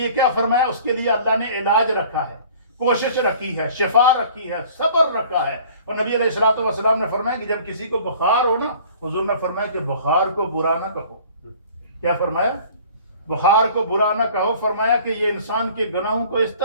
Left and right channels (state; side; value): inverted; both; correlation -0.49